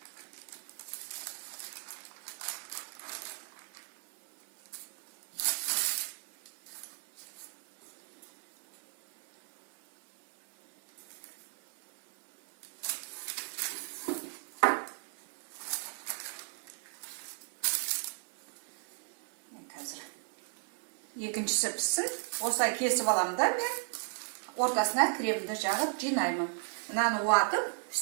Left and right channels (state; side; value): silent; left; 53 dB below the other